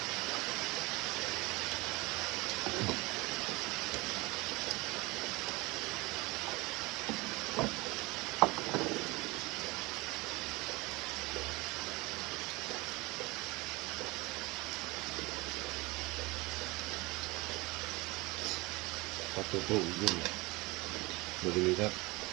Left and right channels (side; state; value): left; quieter; 23.5 dB